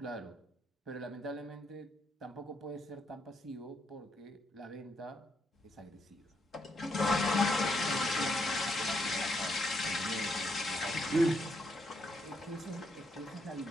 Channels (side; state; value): both; normal; correlation 0.77